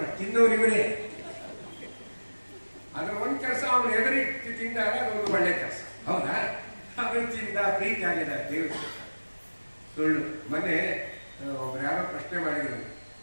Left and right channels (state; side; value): inverted; both; correlation -1.00